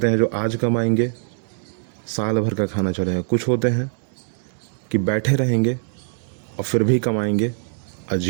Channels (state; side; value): silent; left; 61 dB below the other